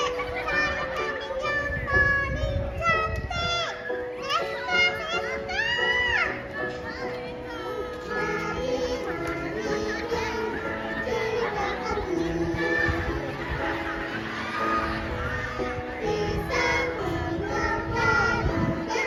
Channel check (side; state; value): both; identical; correlation 1.00